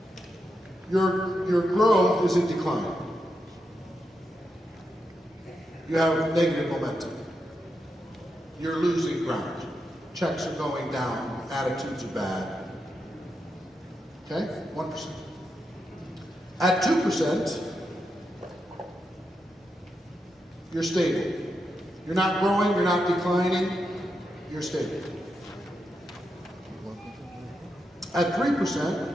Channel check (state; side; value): normal; both; correlation 0.85